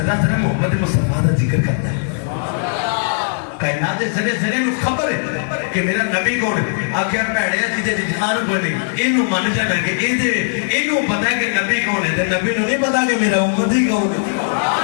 ذرا محمد مصطفیٰ دا ذکر کرتا ہے کائنات ذرے ذرے میں خبر ہے کہ میرا نبی کون ہے آخر پیڑیا جی دے جہان کو نہیں انہوں مان جانا کہ انہوں پتہ ہے کہ نبی کون ہے نبی نو نہیں پتا کہ میرا امتی کون ہے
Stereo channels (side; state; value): right; silent; 67 dB below the other